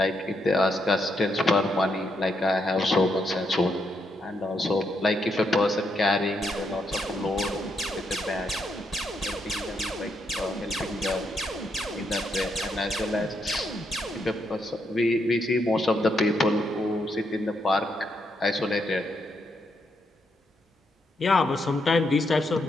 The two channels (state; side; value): normal; both; correlation 0.79